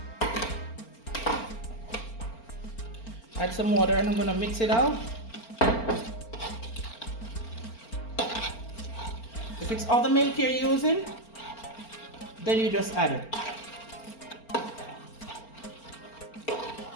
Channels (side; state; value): right; late; 4.4 ms